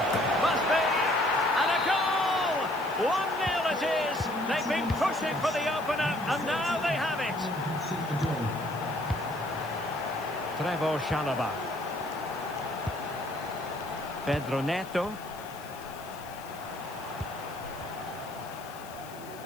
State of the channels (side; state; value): left; noise; hiss, 19 dB below the sound